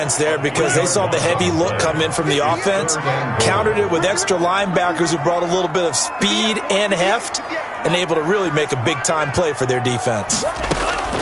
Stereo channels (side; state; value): both; identical; correlation 1.00